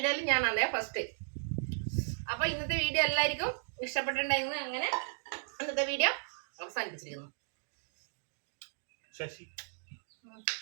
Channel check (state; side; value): silent; left; digital silence